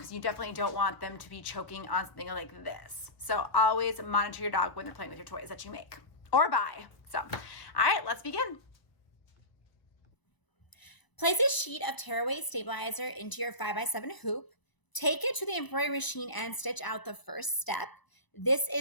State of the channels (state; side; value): late; right; 1.0 ms